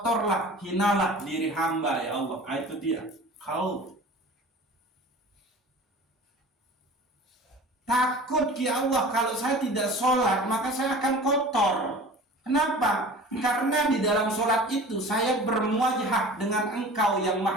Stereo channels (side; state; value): both; normal; correlation 0.40